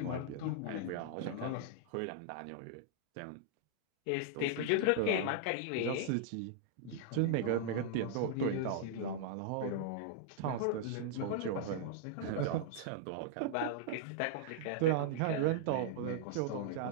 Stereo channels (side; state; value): both; different; correlation -0.01